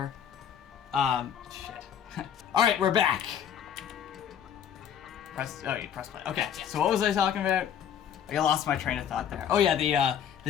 Shit. All right, we're back. You press play. Okay, so what was I talking about? I lost my train of thought there. Oh yeah,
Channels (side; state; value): right; quieter; 8.9 dB